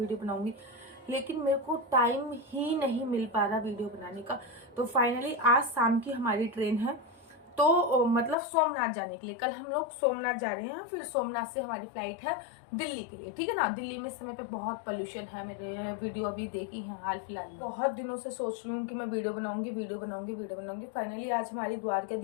बनाऊंगी, लेकिन मेरे को टाइम ही नहीं मिल पा रहा वीडियो बनाने का। तो फाइनली आज शाम की हमारी ट्रेन है, तो मतलब सोमनाथ जाने के लिए। कल हम लोग सोमनाथ जा रहे हैं, फिर सोमनाथ से हमारी फ्लाइट है दिल्ली के लिए, ठीक है ना। दिल्ली में इस समय पे बहुत पोल्यूशन है। मेरे वीडियो अभी देखी है हाल फिलहाल में। बहुत दिनों से सोच रही हूँ कि मैं वीडियो बनाऊंगी, वीडियो बनाऊंगी, वीडियो बनाऊंगी। फाइनली आज हमारी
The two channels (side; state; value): right; drops out; at 8.3 s